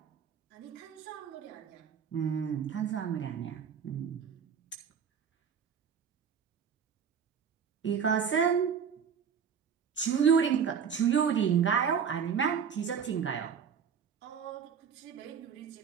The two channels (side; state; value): left; quieter; 7.2 dB